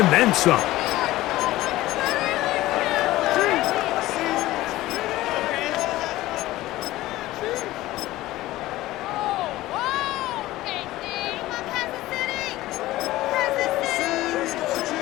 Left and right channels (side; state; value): right; quieter; 16.8 dB